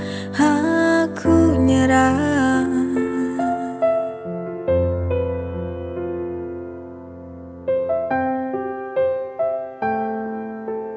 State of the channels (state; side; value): identical; both; correlation 1.00